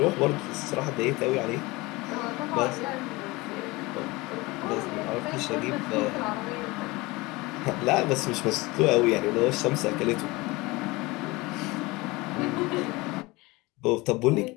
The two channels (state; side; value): quieter; right; 22.6 dB